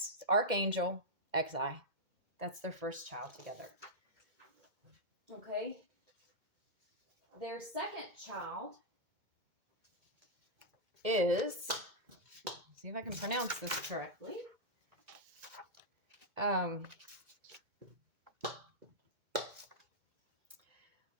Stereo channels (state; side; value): late; left; 2.2 ms